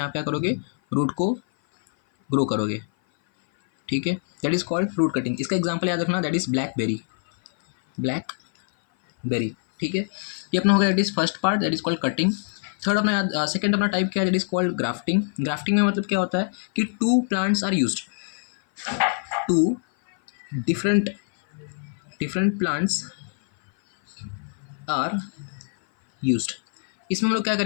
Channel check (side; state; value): right; silent; 56 dB below the other